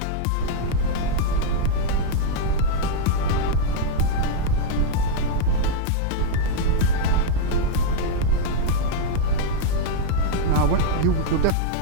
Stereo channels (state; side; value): different; both; correlation -0.01